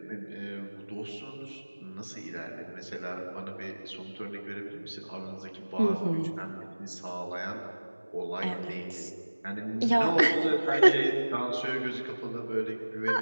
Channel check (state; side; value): inverted; both; correlation -1.00